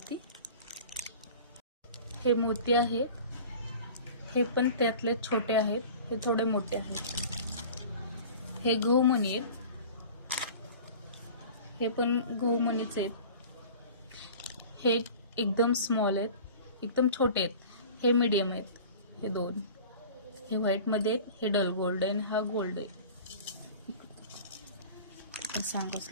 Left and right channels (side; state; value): both; inverted; correlation -0.41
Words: हे मोती आहेत, हे पण त्यातले छोटे आहेत, हे थोडे मोठे आहेत। हे गहूमणी आहेत, हे पण गहूमणीचे आहेत। हे एकदम स्मॉल आहेत, एकदम छोटे आहेत, हे मीडियम आहेत। हे दोन हे व्हाईट मध्ये आहेत, हे डल गोल्ड आहे, हा गोल्ड आहे, सांगावंच